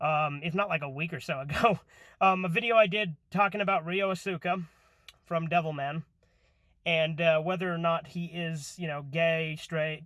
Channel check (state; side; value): identical; both; correlation 1.00